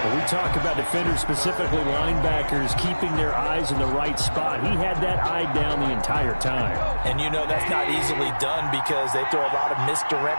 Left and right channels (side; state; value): both; inverted; correlation -1.00